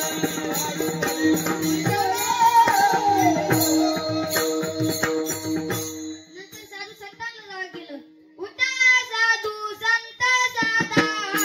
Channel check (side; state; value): both; identical; correlation 1.00